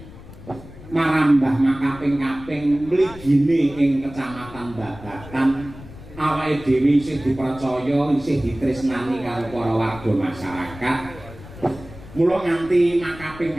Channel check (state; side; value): noise; left; rumble, 17 dB below the sound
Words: Marambah makaping-kaping mligine ing kecamatan Babatan awake dhewe isih dipercaya isih ditresnani karo para warga masyarakat. Mula nganti